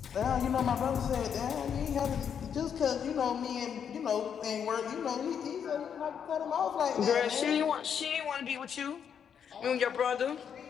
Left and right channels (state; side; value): quieter; right; 7.9 dB